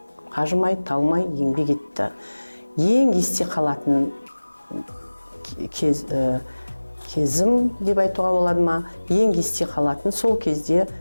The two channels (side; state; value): both; inverted; correlation -1.00